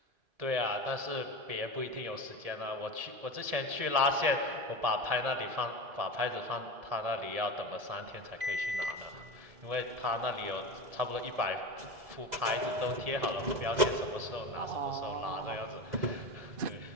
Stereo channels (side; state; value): left; late; 1.7 ms